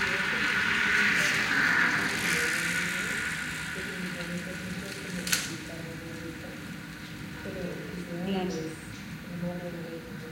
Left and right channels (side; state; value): both; identical; correlation 1.00